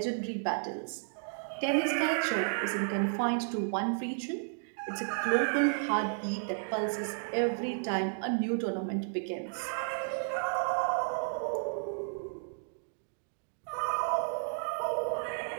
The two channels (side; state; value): left; silent; digital silence